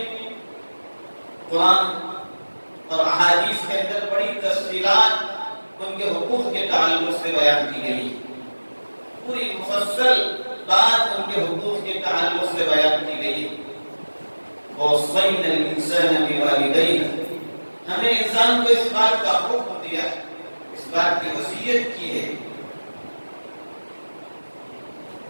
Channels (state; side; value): inverted; both; correlation -1.00